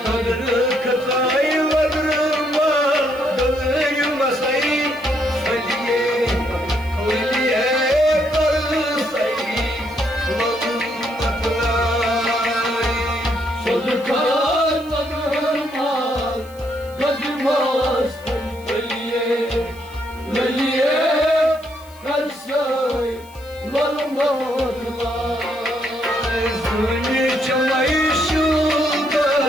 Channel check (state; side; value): noise; left; hiss, 24 dB below the sound